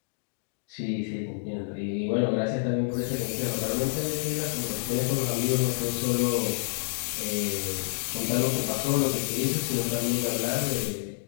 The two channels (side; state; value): right; silent; digital silence